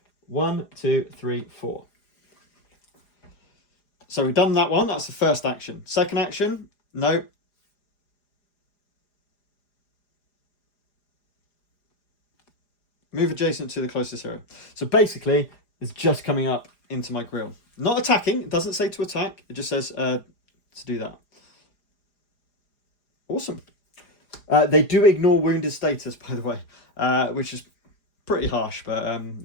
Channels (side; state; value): right; late; 4.9 ms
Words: 1, 2, 3, 4. So we've done that one. That's the first action. Second action, no. Move adjacent to the closest hero. So basically, it's just coming up into my grill. Not attacking. It doesn't say to attack. It just says to do that. Awesome. They do ignore wounded status, by the way, which is pretty harsh, but